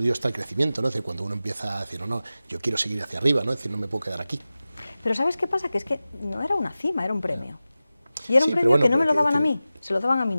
está el crecimiento, ¿no? Es decir, cuando uno empieza a decir, no, yo quiero seguir hacia arriba, ¿no? Es decir, no me puedo quedar aquí. Pero ¿sabes qué pasa? Que es que no era una cima, era un premio. Y era un premio que no me lo daban a mí, se lo daban a mi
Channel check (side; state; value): both; inverted; correlation -0.95